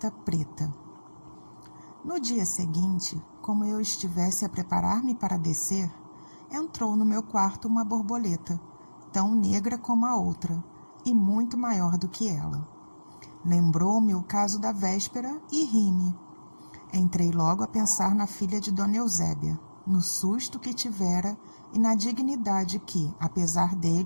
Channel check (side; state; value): both; inverted; correlation -1.00